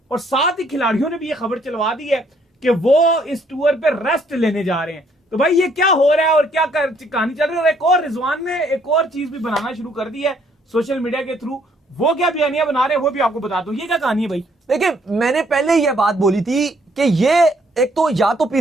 और साथ ही खिलाड़ियों ने भी ये खबर चलवा दी है कि वो इस टूर पे रेस्ट लेने जा रहे हैं। तो भाई ये क्या हो रहा है और क्या कहानी चल रही है। और एक और रिजवान ने एक और चीज भी बनाना शुरू कर दी है सोशल मीडिया के थ्रू। वो क्या बयानियां बना रहे हैं वो भी आपको बता दूं। ये क्या कहानी है भाई? देखिए, मैंने पहले ही यह बात बोली थी कि ये एक तो या तो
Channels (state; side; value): normal; both; correlation 0.66